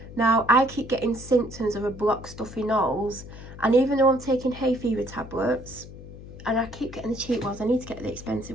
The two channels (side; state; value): left; noise; hum, 15 dB below the sound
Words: Now I keep getting symptoms of a blocked stuffy nose, and even though I'm taking hay fever tablets, and I keep getting the cheap ones, I need to get the